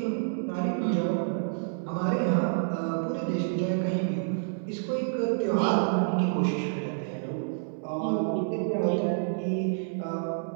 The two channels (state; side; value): silent; left; 59 dB below the other